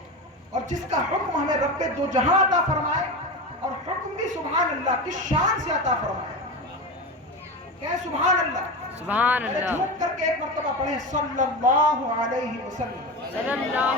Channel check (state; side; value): normal; both; correlation 0.23